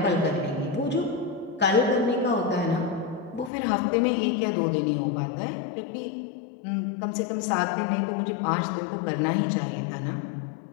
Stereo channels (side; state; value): right; drops out; at 3.5 s